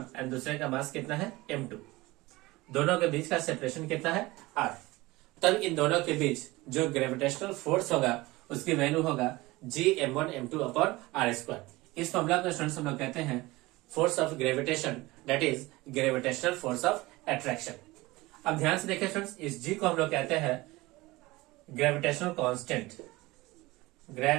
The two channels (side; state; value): left; quieter; 20.7 dB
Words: एंड दूसरे का मास कितना है m2। दोनों के बीच का सेपरेशन कितना है r। तब इन दोनों के बीच जो ग्रेविटेशनल फोर्स होगा उसकी वैल्यू होगा g m1 m2 upon r square. इस फॉर्मूला को स्टूडेंट्स हम लोग कहते हैं force of gravitation, that is gravitational force of attraction. अब ध्यान से देखिए स्टूडेंट्स, इस g को हम लोग कहते हैं ग्रेविटेशनल कांस्टेंट।